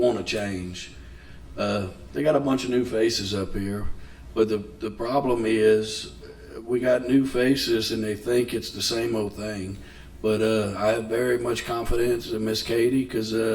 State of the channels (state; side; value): identical; both; correlation 1.00